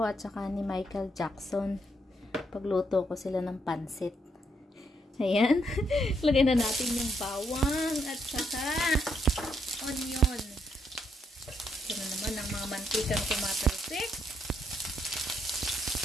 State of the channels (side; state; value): both; normal; correlation 0.76